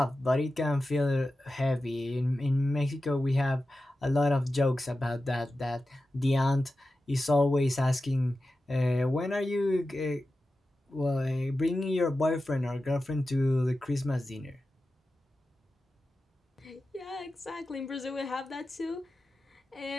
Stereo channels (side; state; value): both; normal; correlation 0.93